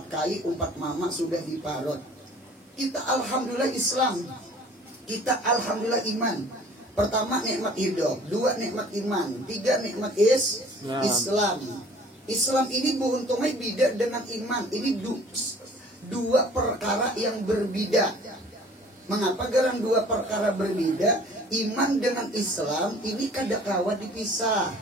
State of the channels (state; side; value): normal; both; correlation 0.50